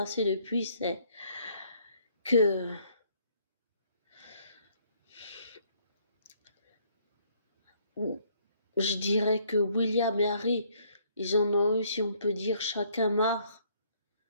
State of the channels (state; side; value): inverted; both; correlation -0.66